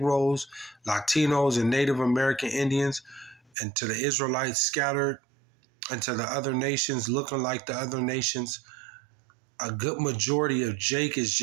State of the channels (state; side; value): drops out; left; at 3.5 s